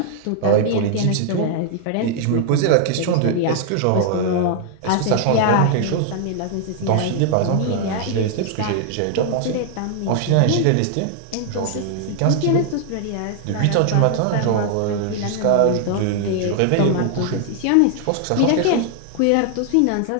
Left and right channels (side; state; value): both; different; correlation 0.00